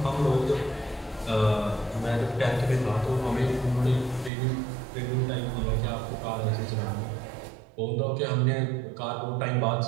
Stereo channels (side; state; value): left; drops out; at 4.3 s